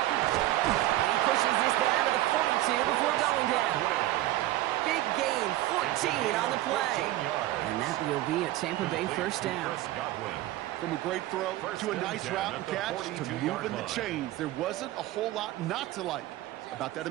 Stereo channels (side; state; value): left; quieter; 15.7 dB